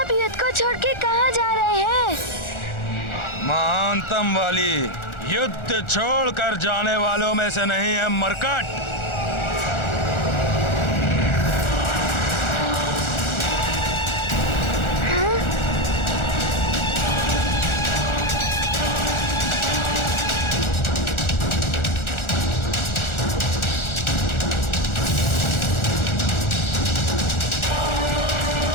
युद्ध को छोड़ के कहाँ जा रहे हैं? महानतम वाली युद्ध छोड़कर जाने वालों में से नहीं है मरकट।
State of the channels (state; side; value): late; right; 1.4 ms